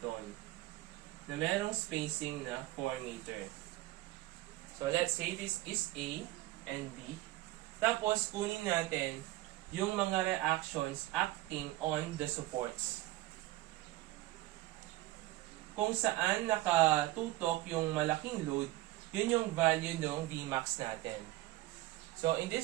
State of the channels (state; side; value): quieter; left; 17.8 dB